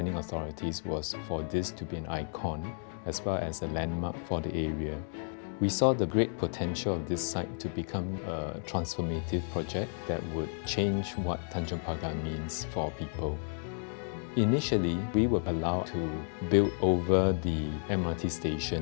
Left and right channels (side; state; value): right; silent; 56 dB below the other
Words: authorities was for this to be an icon as well as a landmark for the area. We saw the great potential of this site to become a transformative project that would change what Tanjong Pagar means for people. Initially, we were allowed to build over the MRT